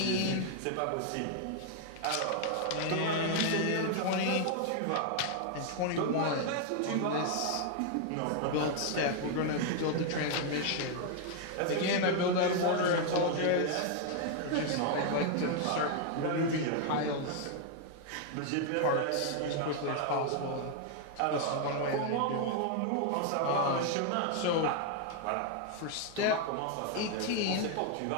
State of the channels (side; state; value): both; different; correlation 0.00